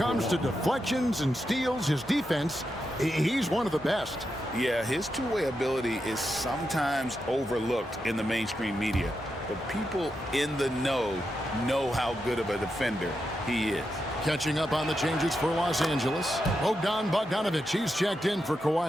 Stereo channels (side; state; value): both; normal; correlation 0.86